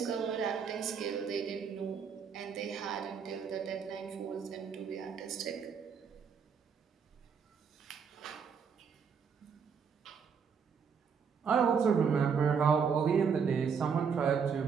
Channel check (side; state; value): left; quieter; 6.4 dB